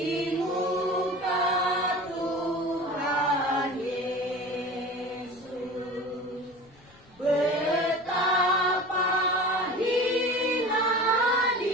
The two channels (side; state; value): left; noise; rumble, 28 dB below the sound